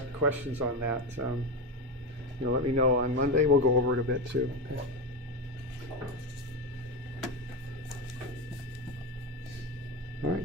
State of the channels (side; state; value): both; normal; correlation 0.16